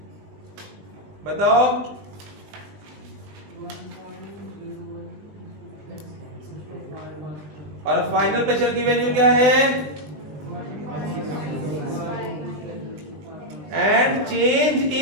बताओ? और फाइनल प्रेशर की वैल्यू क्या है? And change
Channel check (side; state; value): left; late; 20 ms